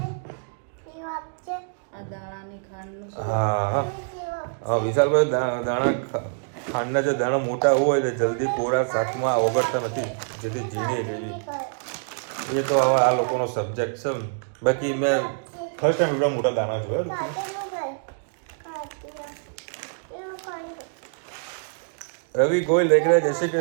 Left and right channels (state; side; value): silent; left; digital silence